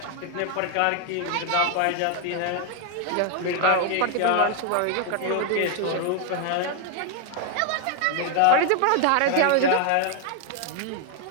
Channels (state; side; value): different; both; correlation 0.00